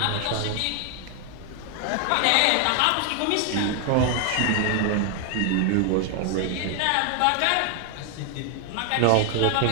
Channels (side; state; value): both; different; correlation 0.00